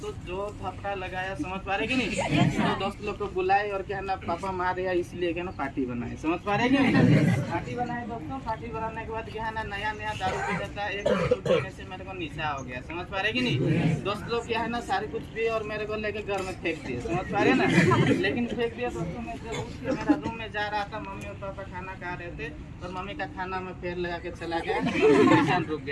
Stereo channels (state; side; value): identical; both; correlation 1.00